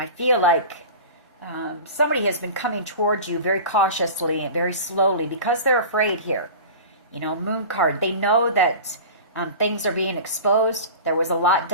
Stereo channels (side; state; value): both; inverted; correlation -0.35